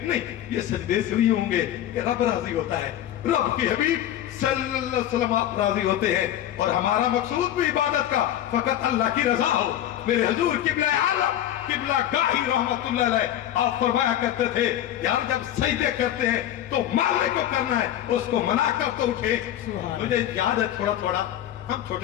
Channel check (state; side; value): quieter; right; 11.8 dB